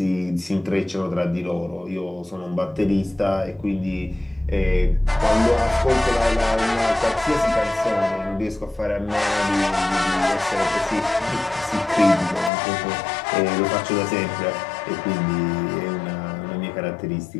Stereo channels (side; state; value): right; drops out; at 12.5 s